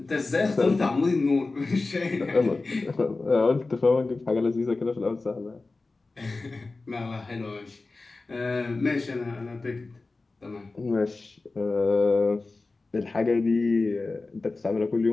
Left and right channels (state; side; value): quieter; right; 3.5 dB